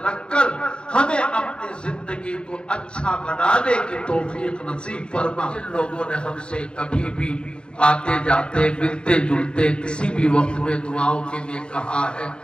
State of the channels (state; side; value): late; right; 0.053 ms